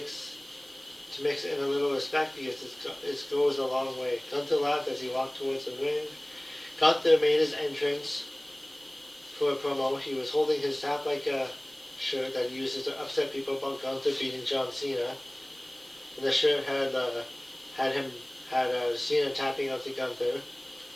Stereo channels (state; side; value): noise; right; hiss, 24 dB below the sound